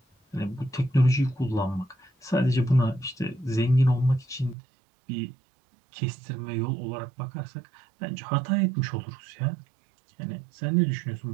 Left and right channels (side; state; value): left; drops out; at 4.5 s